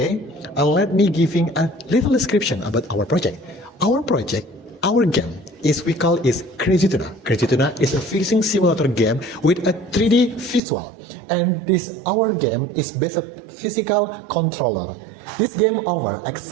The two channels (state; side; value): drops out; left; at 10.6 s